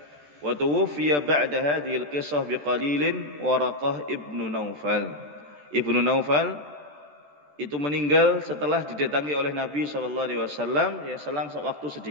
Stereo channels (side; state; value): left; late; 14 ms